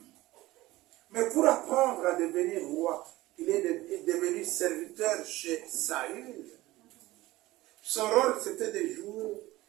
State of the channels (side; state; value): left; quieter; 18.0 dB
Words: Mais pour apprendre à devenir roi, il est devenu serviteur chez Saül. Son rôle, c'était de jouer.